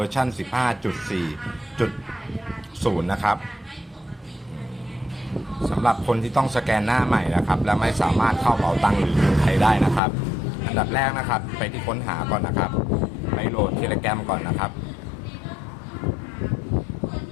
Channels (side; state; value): right; drops out; at 10.0 s